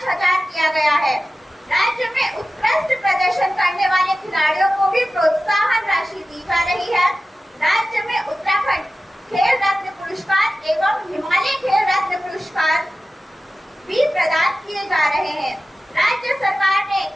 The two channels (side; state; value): both; normal; correlation 0.95